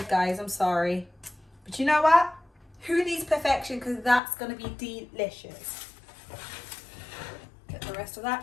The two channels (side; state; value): right; drops out; at 4.2 s